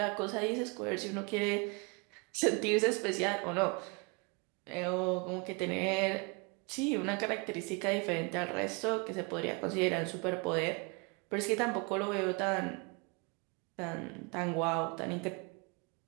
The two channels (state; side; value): quieter; left; 30.6 dB